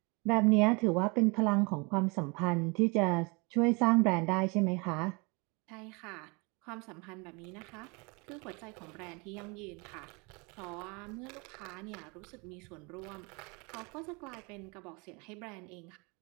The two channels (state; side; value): quieter; left; 29.1 dB